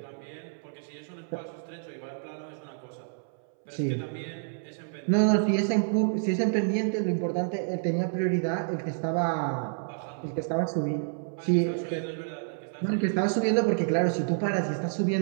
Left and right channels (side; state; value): left; silent; 59 dB below the other